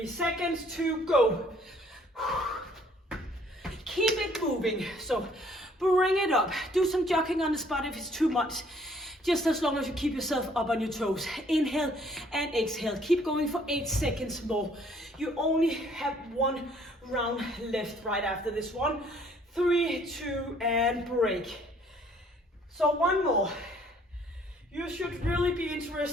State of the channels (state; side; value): normal; both; correlation 0.61